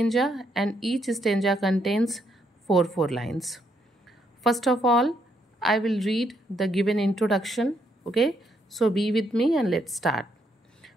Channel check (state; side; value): normal; both; correlation 0.75